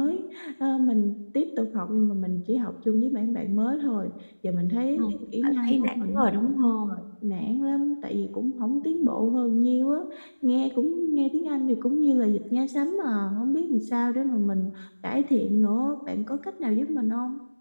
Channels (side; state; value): both; inverted; correlation -1.00